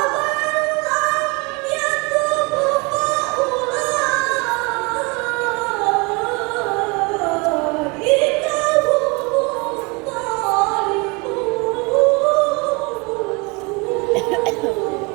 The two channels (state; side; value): quieter; left; 28.6 dB